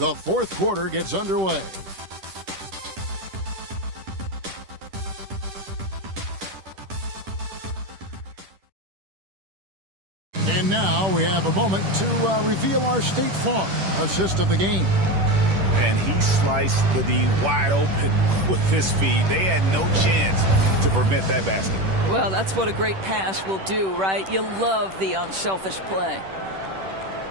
4th quarter gets underway. And now we have a moment to reveal our State Farm assist of the game. And he sliced the D wide open with his feet. They had no chance to prevent that basket. Well, that's what a great pass will do, right? You love the unselfish play.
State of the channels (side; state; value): left; late; 10 ms